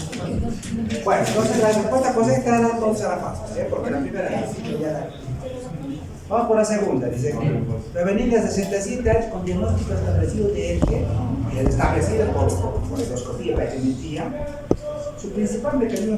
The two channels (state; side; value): identical; both; correlation 1.00